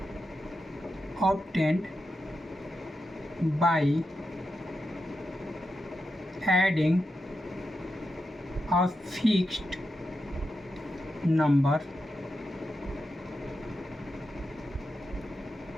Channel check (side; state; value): both; normal; correlation 0.88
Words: obtained by adding a fixed number